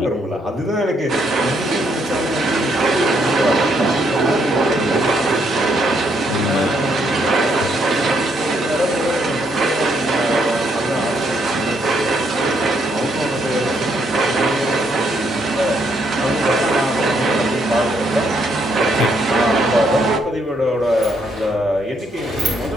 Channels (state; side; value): normal; both; correlation 0.73